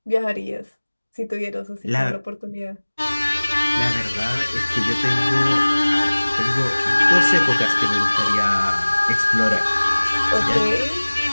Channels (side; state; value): both; inverted; correlation -1.00